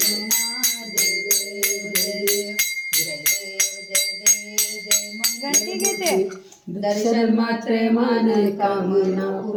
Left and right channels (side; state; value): both; identical; correlation 1.00